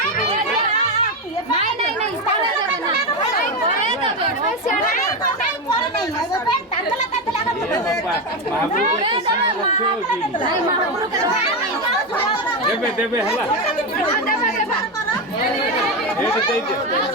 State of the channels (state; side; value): normal; both; correlation 0.12